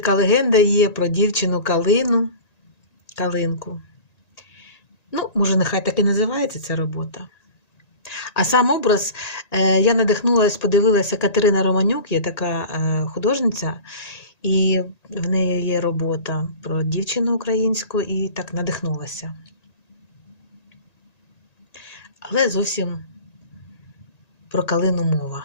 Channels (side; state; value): right; late; 1.9 ms